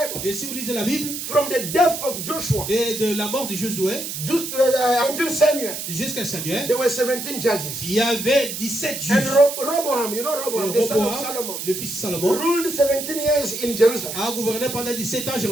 Et si vous lisez la Bible, from the death of Joshua et de la mort de Josué until Samuel, jusqu'à Samuel, there were 17 judges. il y avait 17 And juges. Roboam, you know Roboam, the son of Solomon, Roboam, le fils de Salomon, ruled 17 years in Jerusalem. a gouverné pendant 17 ans à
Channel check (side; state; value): right; noise; hiss, 6 dB below the sound